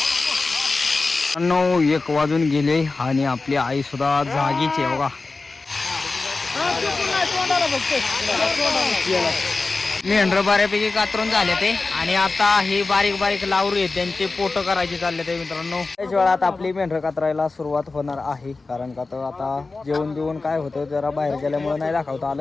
नऊ 1 वाजून गेले आणि आपली आई सुद्धा जागीच आहे बघा. मेंढर बऱ्यापैकी कातरून झाले ते आणि आता हे बारीक बारीक लावरू आहेत त्यांचे पोट करायचे चालले ते मित्रांनो. त्याच वेळात आपली मेंढर कातरायला सुरुवात होणार आहे. कारण का तर आता जेवण बिवून काय होतं जरा बाहेर गेल्यामुळे नाही दाखवता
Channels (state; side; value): quieter; right; 3.7 dB